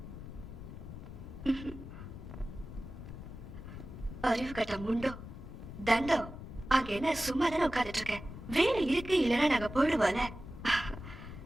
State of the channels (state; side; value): noise; left; rumble, 11 dB below the sound